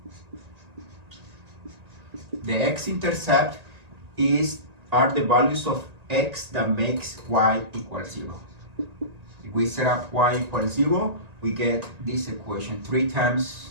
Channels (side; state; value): left; late; 1.9 ms